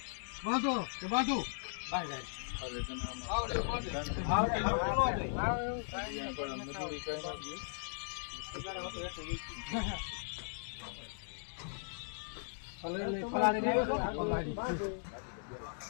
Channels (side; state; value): right; silent; digital silence